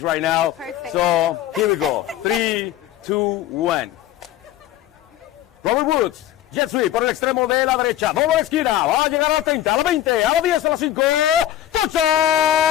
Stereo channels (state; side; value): quieter; right; 12.6 dB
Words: now. Perfect. So here we go. 3, 2, 1. Robert Woods, jet sweep por el extremo de la derecha. Doble esquina. Va a llegar a la 30, a la 20, a la 10, a la 5. ¡Touchdown!